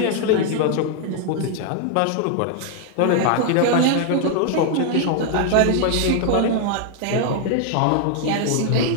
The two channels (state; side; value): different; both; correlation 0.00